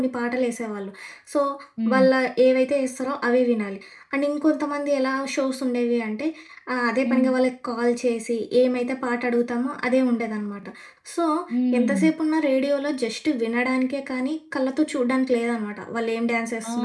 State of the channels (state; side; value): identical; both; correlation 1.00